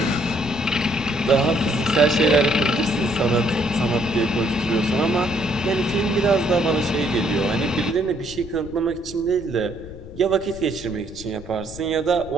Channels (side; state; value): left; noise; rumble, 15 dB below the sound